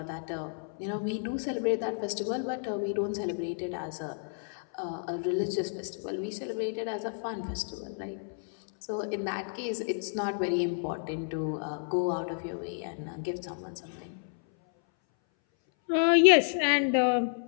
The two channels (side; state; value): right; silent; 57 dB below the other